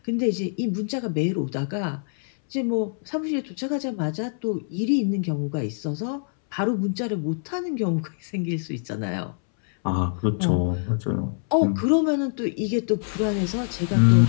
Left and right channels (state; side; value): silent; right; 62 dB below the other